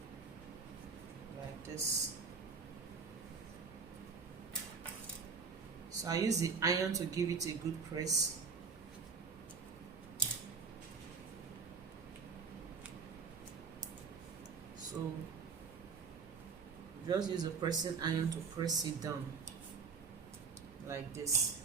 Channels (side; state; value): left; quieter; 5.6 dB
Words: like this. So I use the iron to give it a good press. So just use a pressing iron to press it down like this.